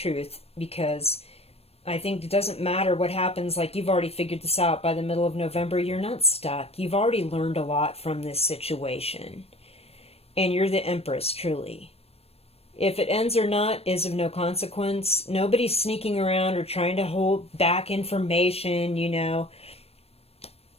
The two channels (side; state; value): right; late; 0.29 ms